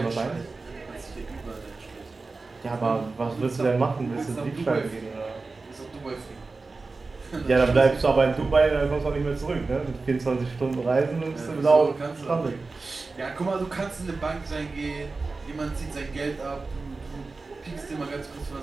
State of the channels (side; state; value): left; quieter; 3.8 dB